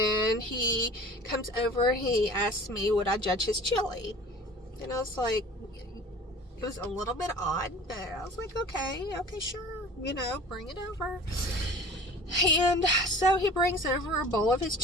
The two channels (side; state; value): both; normal; correlation 0.42